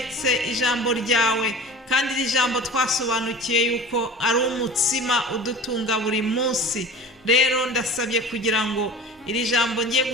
ijambo ryawe, kandi iri jambo twasobanukiye yuko ari umutsima udutunga buri munsi. Rero ndasabye kugira ngo iri jambo ngiye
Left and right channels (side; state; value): both; normal; correlation 0.38